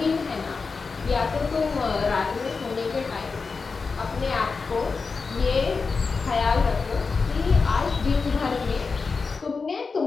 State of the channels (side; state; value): right; quieter; 4.6 dB